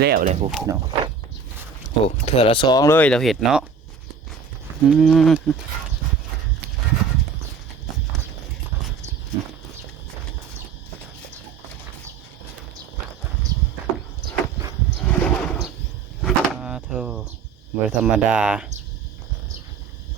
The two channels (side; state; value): left; quieter; 5.6 dB